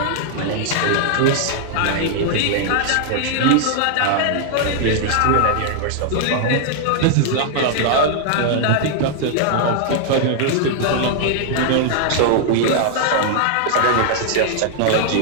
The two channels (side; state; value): both; different; correlation 0.00